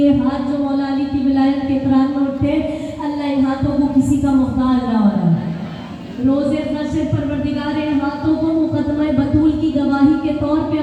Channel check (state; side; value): identical; both; correlation 1.00